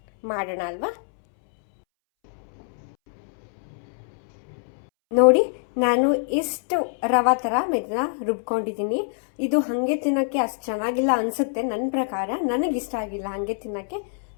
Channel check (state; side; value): silent; right; 62 dB below the other